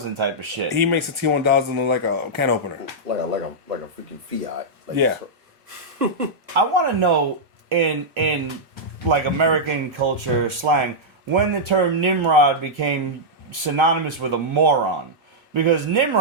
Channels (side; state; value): left; late; 1.3 ms